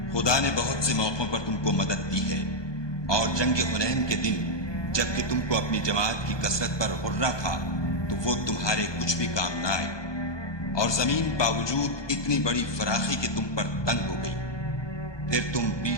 خدا نے بہت سے موقعوں پر تم کو مدد دی ہے، اور جنگ حنین کے دن جبکہ تم کو اپنی جماعت کی کثرت پر غرہ تھا تو وہ تمہارے کچھ بھی کام نہ آئے، اور زمین باوجود اتنی بڑی فراخی کہ تم پر تنگ ہو گئی، پھر تم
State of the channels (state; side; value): late; right; 1.2 ms